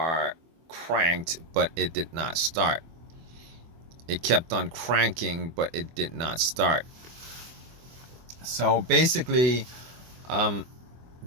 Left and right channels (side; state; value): left; late; 24 ms